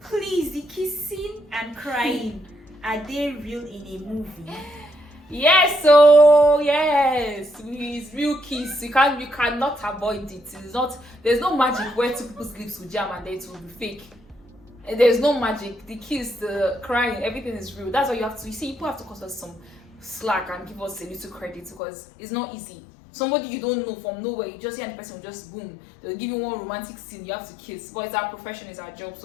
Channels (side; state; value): right; drops out; at 21.8 s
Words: the kissing and crying, are they real in a movie? Yes, so yes, it's real kiss. You cannot avoid it. It's not. There's no magic where two people's lips will jam and then it will be fake. And there's no magic. The kiss, the crying, everything is real. That's why you have to. You see, people have to cut us some slack and give us a little credit because it's not easy. Somebody you don't know from nowhere, you just hear the person will just boom. They'll give you one romantic scene. You have to kiss. But it's our profession, it's our job.